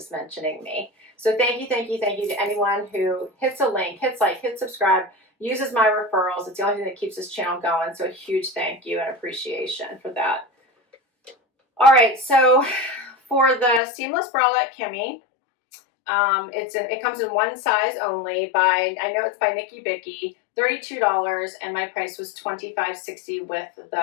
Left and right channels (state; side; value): drops out; right; at 13.8 s